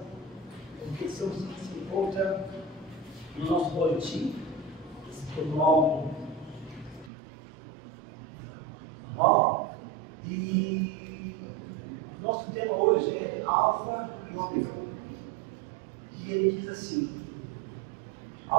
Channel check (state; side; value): drops out; left; at 7.1 s